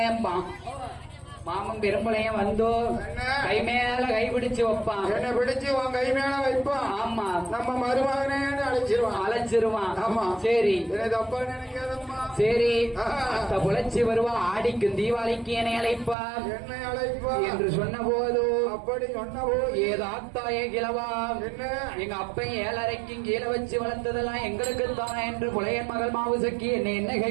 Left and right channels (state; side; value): drops out; left; at 16.2 s